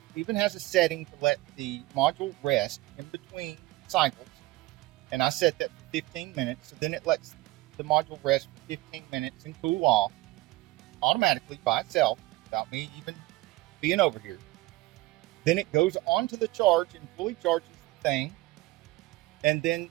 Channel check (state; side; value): quieter; left; 19.6 dB